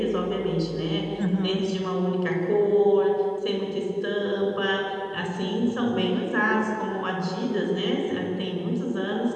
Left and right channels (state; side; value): identical; both; correlation 1.00